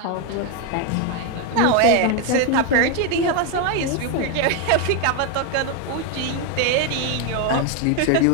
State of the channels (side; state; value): both; different; correlation 0.01